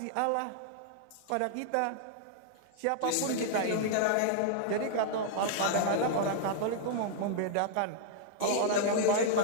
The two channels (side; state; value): both; different; correlation -0.01